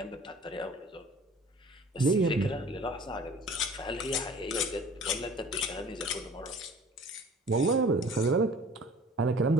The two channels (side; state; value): both; normal; correlation 0.47